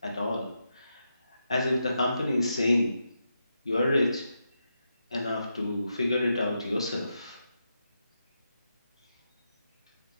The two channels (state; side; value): inverted; both; correlation -0.85